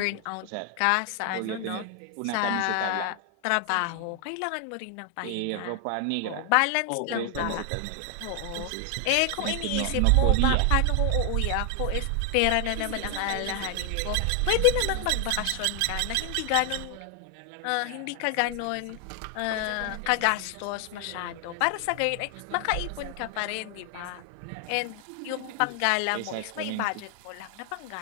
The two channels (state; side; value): different; both; correlation 0.00